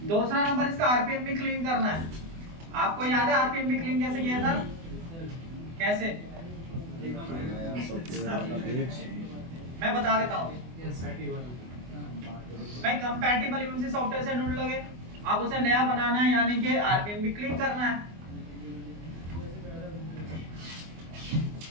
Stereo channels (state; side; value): late; left; 24 ms